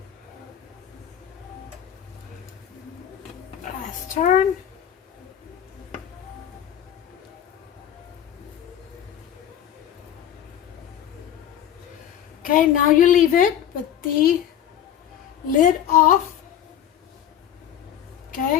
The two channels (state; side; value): quieter; right; 10.3 dB